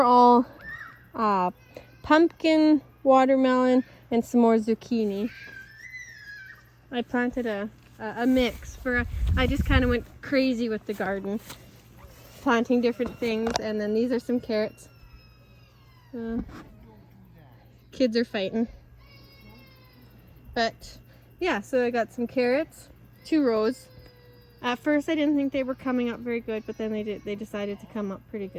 all pumpkin, watermelon, and some more zucchini. I planted a mix for, I just kind of went crazy with the garden, planting different things. And then these are some carrots. Kids are fighting. But yeah, so I got some carrots, 2 rows. At first I didn't think they were coming up very good, but then they decided to come up pretty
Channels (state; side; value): identical; both; correlation 1.00